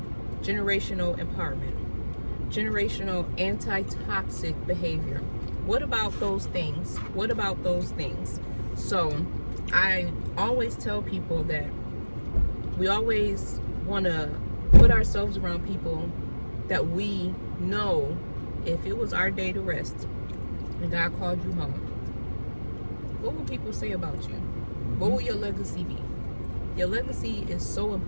generational empowerment, generational anti-toxic behavior? What about those things? What about those things? So I always tell people that we always want to put ourselves around people that we know if it was our day to rest and God called you home, what will people say about you? What will your legacy be? Your legacy is so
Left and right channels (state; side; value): inverted; both; correlation -1.00